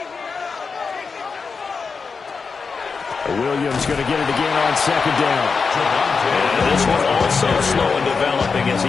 Williams going to get it again on second down. And this one also slow in developing as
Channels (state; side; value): quieter; right; 5.0 dB